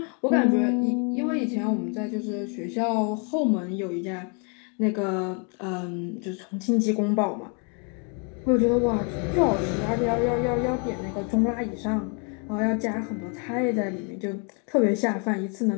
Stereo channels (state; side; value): quieter; right; 35.1 dB